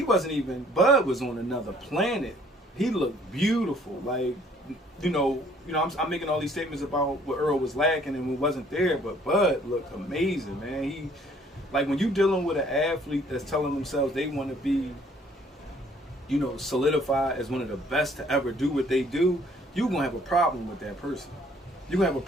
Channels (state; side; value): normal; both; correlation 0.60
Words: wasn't even, Bud was on another planet. He looked beautiful. I'm making all these statements about what Errol was lacking and what wasn't there, but Bud looked amazing, man. When you dealing with an athlete that's telling themselves they want to be, solidified as one of the best to ever do what they do, you're going to have a problem with that person. you're gonna have a